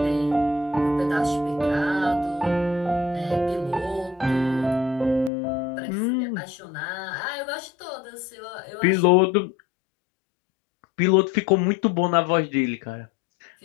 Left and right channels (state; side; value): drops out; right; at 5.3 s